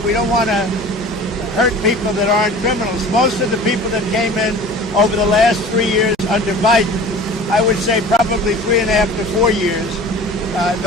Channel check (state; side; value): normal; both; correlation 0.41